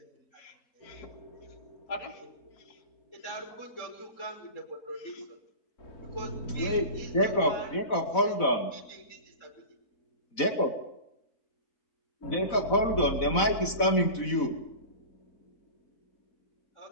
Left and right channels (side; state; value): right; late; 4.0 ms